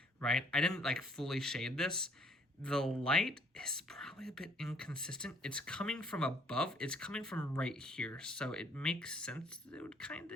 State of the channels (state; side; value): normal; both; correlation 0.62